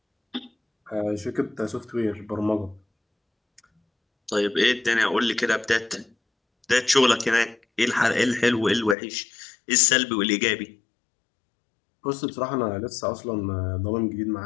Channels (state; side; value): drops out; right; at 9.0 s